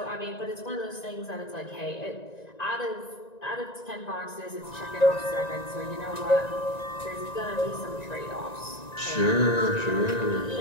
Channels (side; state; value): right; late; 1.9 ms